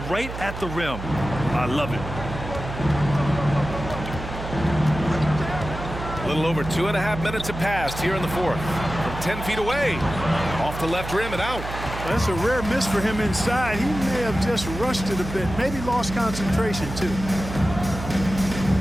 right at the rim. I love it. A little over 2.5 minutes have passed here in the fourth. From 10 feet away. Off the left rim and out. That's a rare miss for him inside. He may have just rushed it a bit, maybe lost concentration too.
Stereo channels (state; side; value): noise; right; hum, 8 dB below the sound